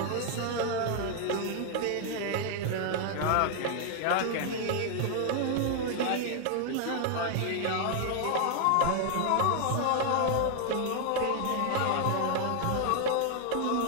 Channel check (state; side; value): different; both; correlation 0.00